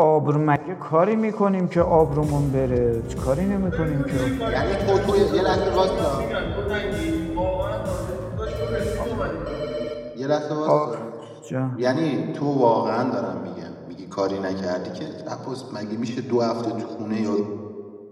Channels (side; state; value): both; identical; correlation 1.00